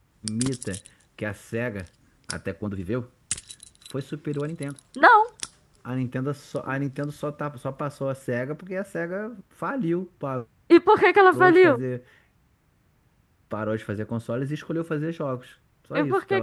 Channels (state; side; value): identical; both; correlation 1.00